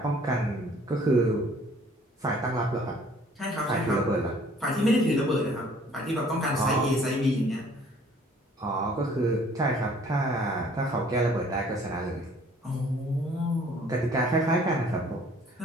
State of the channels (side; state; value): both; normal; correlation 0.56